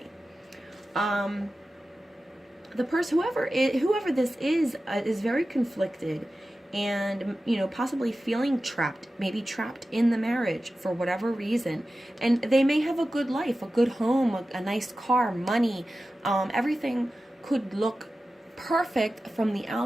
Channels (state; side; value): normal; both; correlation 0.94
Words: The person, whoever this is very conflicted, and possibly feeling trapped, maybe trapped in the marriage for whatever reason. And they may have a good life, a good home, a nice car, money, everything could look perfect from the